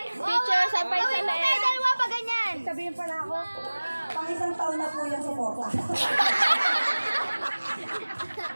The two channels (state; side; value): inverted; both; correlation -1.00